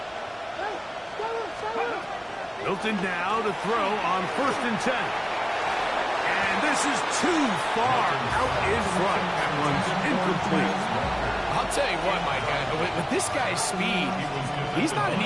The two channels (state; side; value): identical; both; correlation 1.00